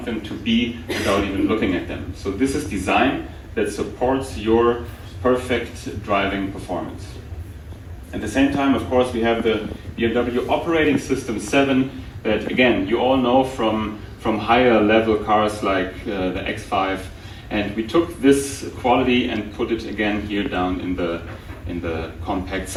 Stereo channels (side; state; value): both; identical; correlation 1.00